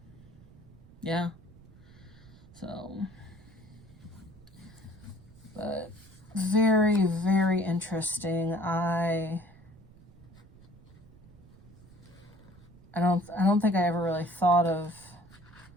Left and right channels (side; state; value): right; noise; rumble, 22 dB below the sound